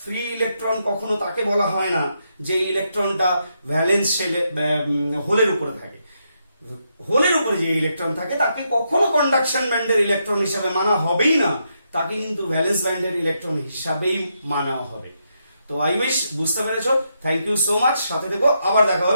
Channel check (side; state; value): both; inverted; correlation -0.81